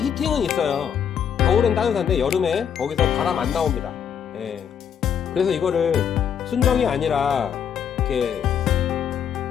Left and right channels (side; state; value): right; quieter; 8.2 dB